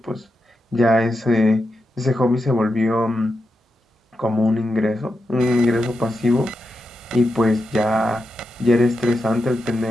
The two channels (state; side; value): normal; both; correlation 0.87